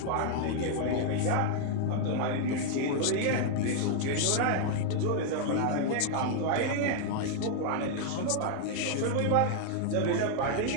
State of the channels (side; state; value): both; different; correlation 0.00